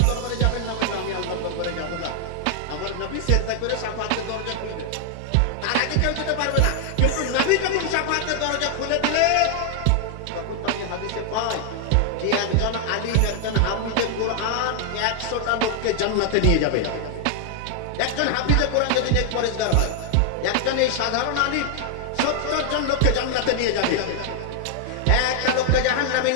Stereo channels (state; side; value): different; both; correlation 0.00